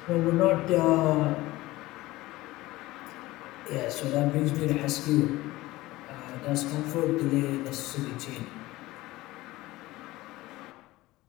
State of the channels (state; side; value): quieter; right; 18.6 dB